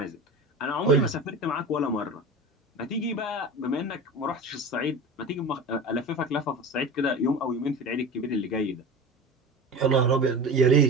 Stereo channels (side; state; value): both; normal; correlation 0.31